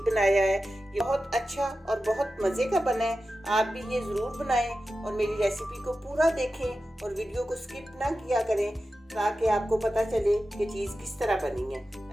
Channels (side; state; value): both; normal; correlation 0.93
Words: बनाया है। ये बहुत अच्छा और बहुत मज़े का बना है। आप भी ये ज़रूर बनाएं और मेरी रेसिपी को पूरा देखें और वीडियो को स्किप ना किया करें ताकि आपको पता चले कि चीज़ किस तरह बनी है।